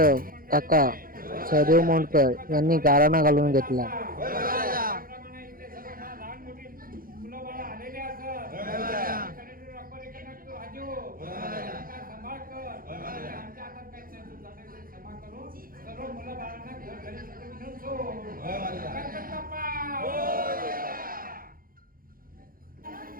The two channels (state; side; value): late; left; 0.42 ms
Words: काका सहदेव मोंडकर यांनी गारणं घालून घेतला.